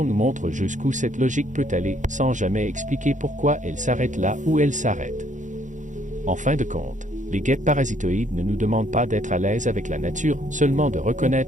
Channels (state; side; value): late; left; 0.36 ms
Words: nous montre jusqu'où cette logique peut aller, sans jamais expliquer pourquoi elle s'arrête là où elle s'arrête. En fin de compte, les guêpes parasitoïdes ne nous demandent pas d'être à l'aise avec la nature, seulement de